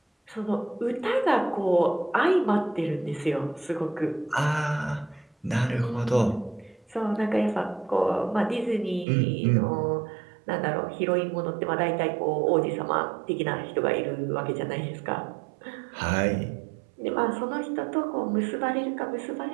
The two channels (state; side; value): drops out; left; at 9.1 s